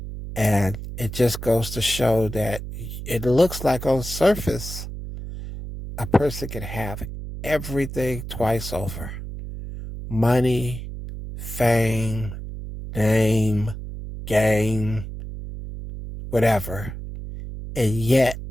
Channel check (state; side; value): noise; right; hum, 9 dB below the sound